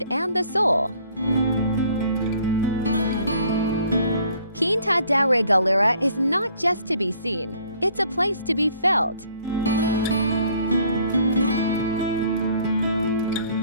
and the soul. Quinta da Regaleira is not just to be seen, it's a place to be felt.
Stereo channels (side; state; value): both; inverted; correlation -0.59